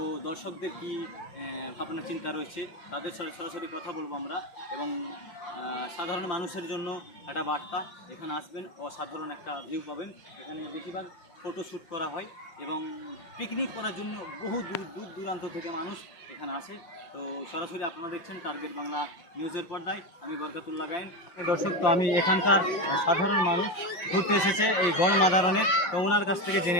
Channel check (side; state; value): right; late; 5.7 ms